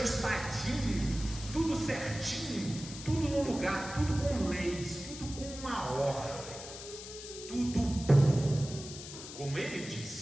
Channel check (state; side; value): noise; left; hiss, 12 dB below the sound